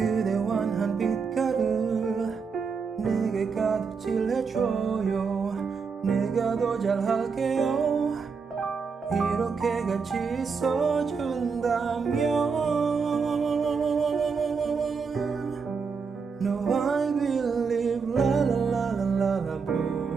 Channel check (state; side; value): quieter; left; 5.4 dB